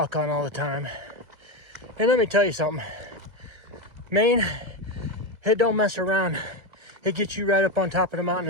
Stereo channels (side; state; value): left; late; 2.0 ms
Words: on all the time. And let me tell you something, Maine, it don't mess around. It gets you right up on top of the mountain